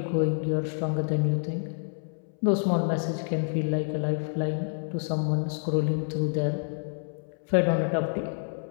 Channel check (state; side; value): silent; right; 59 dB below the other